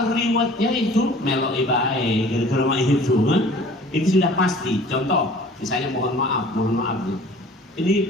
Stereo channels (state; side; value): normal; both; correlation 0.48